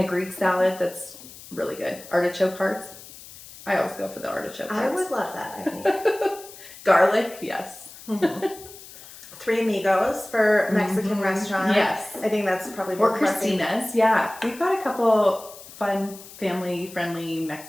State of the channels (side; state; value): left; noise; hiss, 17 dB below the sound